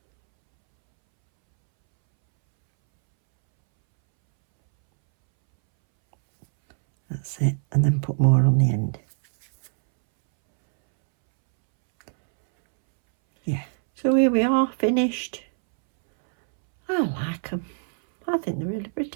That's it, and then put more on the end. Yeah, so here we are, finished. I like them. I think they're really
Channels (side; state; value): left; silent; 63 dB below the other